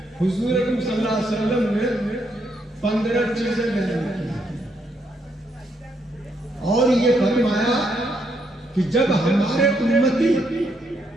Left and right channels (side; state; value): both; normal; correlation 0.76